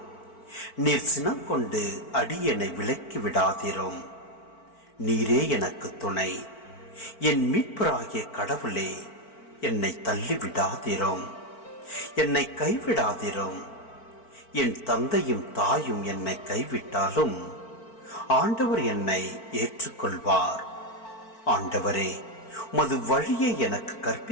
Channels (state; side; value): late; right; 4.5 ms